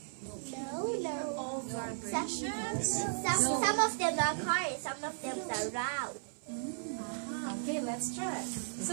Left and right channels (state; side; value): silent; left; 54 dB below the other